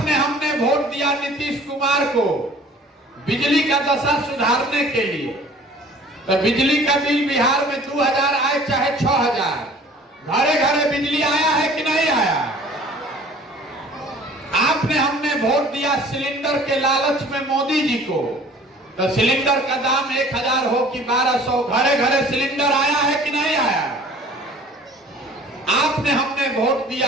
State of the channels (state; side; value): normal; both; correlation 0.50